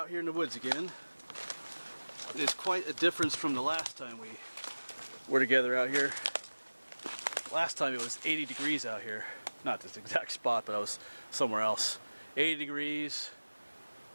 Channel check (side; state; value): both; inverted; correlation -1.00